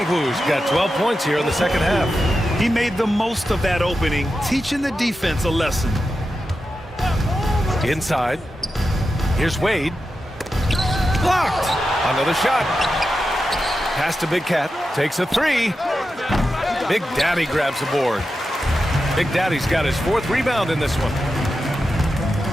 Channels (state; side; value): normal; both; correlation 0.90